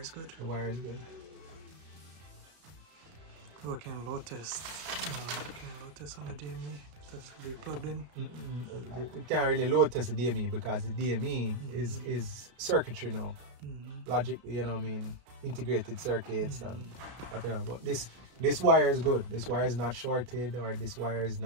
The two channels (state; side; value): late; left; 33 ms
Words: good. The wire is good. Working load test. Working load test on the DME. That's to be plugged in. You can't really load test the DME because the DME is circuitry now. Logic, you know what I mean, integrated circuits and whatever. But this wire is good. This wire is not shorted, or this wire is